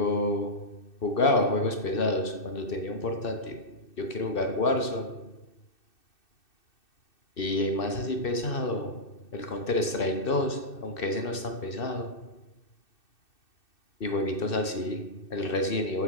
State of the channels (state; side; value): late; right; 2.6 ms